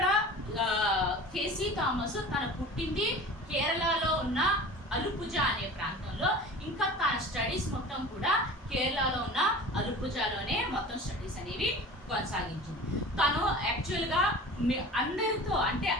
థేసీ థామస్ తన పుట్టింది కేరళలో ఉన్న అలుపుజా అనే ప్రాంతంలో, ఇంకా తన స్టడీస్ మొత్తం కూడా కేరళలో ఉన్న అలుపుజాలోనే మొత్తం స్టడీస్ అనేవి కొనసాగించింది. తను యాక్చువల్గా అందరితో అంటే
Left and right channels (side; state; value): both; normal; correlation 0.39